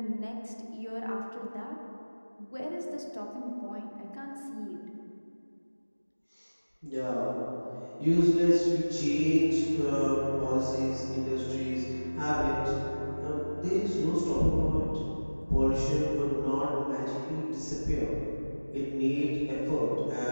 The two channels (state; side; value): inverted; both; correlation -1.00